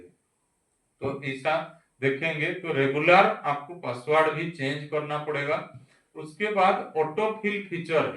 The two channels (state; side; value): identical; both; correlation 1.00